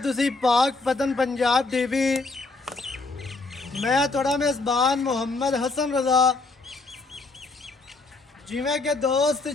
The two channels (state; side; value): quieter; right; 3.7 dB